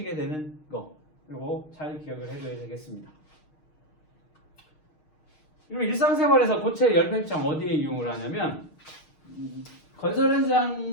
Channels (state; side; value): late; right; 6.5 ms